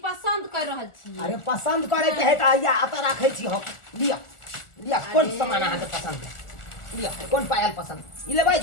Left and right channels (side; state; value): right; late; 1.4 ms